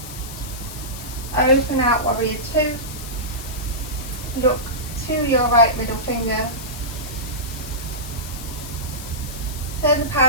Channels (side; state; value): left; noise; hiss, 12 dB below the sound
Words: Open out warrior 2. Look to your right middle finger. Turn the